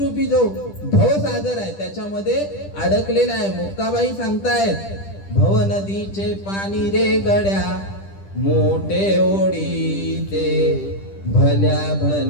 जो भवसागर आहे त्याच्यामध्ये अडकलेला आहे. मुक्ताबाई सांगतायत, भवनदीचे पाणी रे गड्या मोठे ओढीते, भल्या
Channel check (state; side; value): late; right; 10 ms